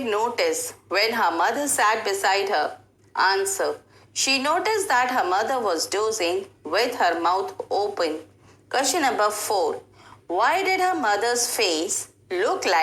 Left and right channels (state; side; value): identical; both; correlation 1.00